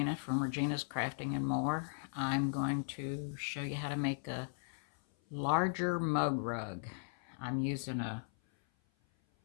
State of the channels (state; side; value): silent; right; 53 dB below the other